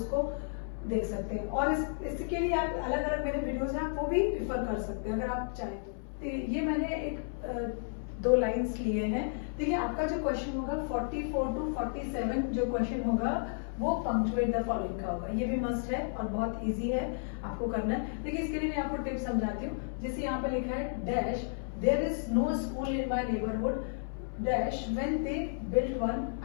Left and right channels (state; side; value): silent; right; 56 dB below the other